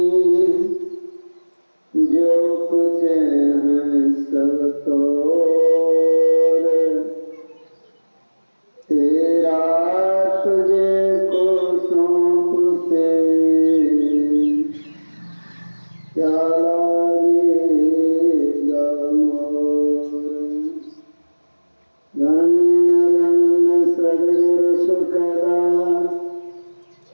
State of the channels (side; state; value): both; inverted; correlation -1.00